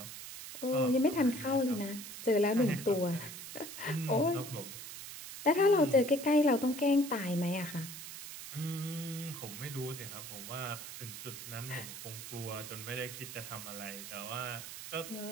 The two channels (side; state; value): right; noise; hiss, 10 dB below the sound